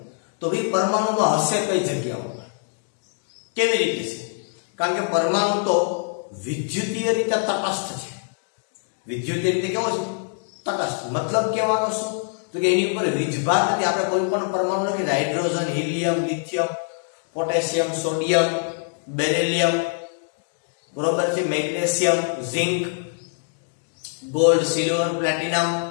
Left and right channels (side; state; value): right; silent; 63 dB below the other